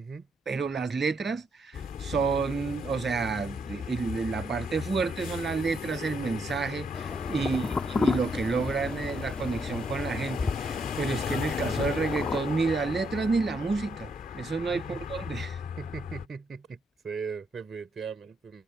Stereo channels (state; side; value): normal; both; correlation 0.75